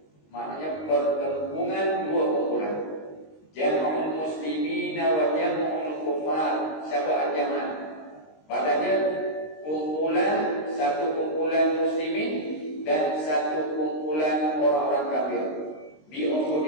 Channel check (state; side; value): late; right; 19 ms